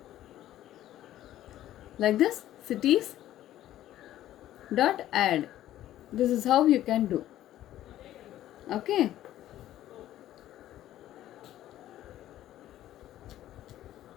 like this, cities dot add. This is how you can do. Okay.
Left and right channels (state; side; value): quieter; right; 13.2 dB